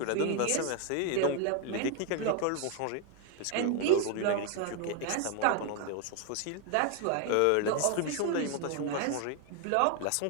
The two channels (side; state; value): both; different; correlation 0.01